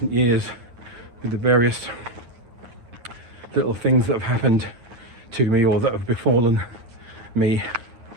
years, with the various little things that have happened to me or that have befallen me,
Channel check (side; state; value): left; late; 8.8 ms